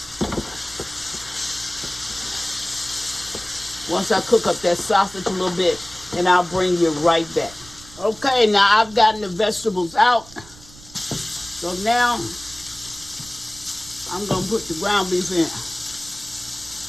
Once I cook up that sausage a little bit, and I'll bring you right back. Okay, now I've gotten the vegetables out. So now I'm gonna put the ground beef in.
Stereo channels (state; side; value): noise; right; rumble, 21 dB below the sound